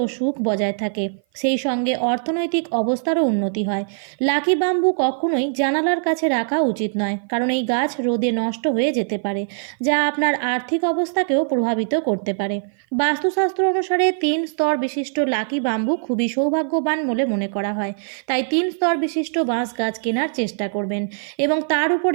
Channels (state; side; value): silent; left; 56 dB below the other